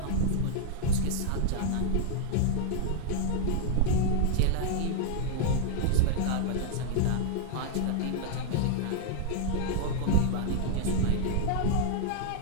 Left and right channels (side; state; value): both; different; correlation -0.01